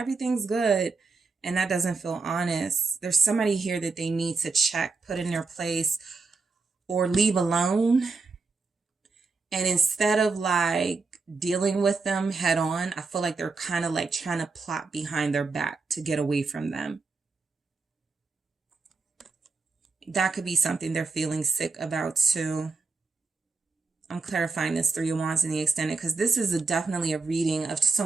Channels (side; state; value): left; quieter; 4.2 dB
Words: good. And that doesn't feel honest. There's somebody here that they need to check, put in their place, or leave alone. And instead of like dealing with them head on, I feel like they're kind of like trying to plot behind their back to get away from them. That could be something they're feeling sick about too. I'm clarifying this 3 of Wands in the extended because this is definitely a reading of